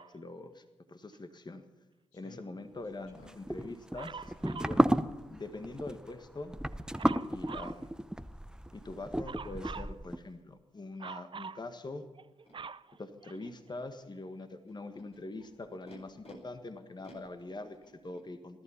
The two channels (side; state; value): both; normal; correlation 0.91